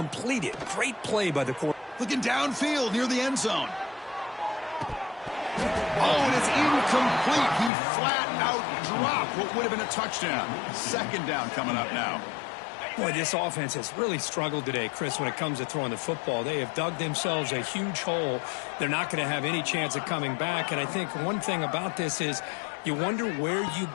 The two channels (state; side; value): drops out; right; at 7.7 s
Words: it. Great play by the quarterback. Looking downfield near the end zone. Oh, and it's incomplete. He flat out dropped what would have been a touchdown. Second down coming up now. Boy, this offense has really struggled today, Chris, when it comes to throwing the football. They have dug themselves a huge hole. They're not going to have any chance of coming back. And I think one thing about this is you wonder where you